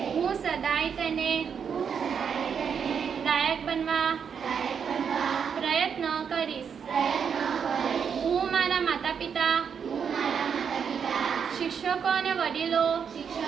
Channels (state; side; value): quieter; left; 7.0 dB